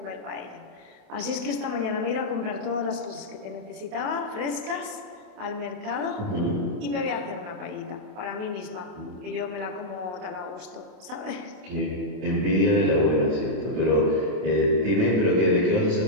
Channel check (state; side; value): late; left; 27 ms